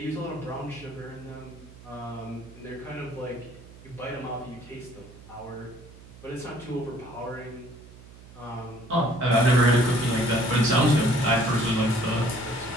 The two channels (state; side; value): noise; right; hum, 20 dB below the sound